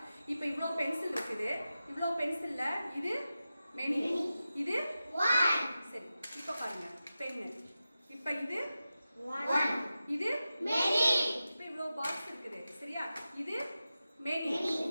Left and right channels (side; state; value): both; inverted; correlation -0.93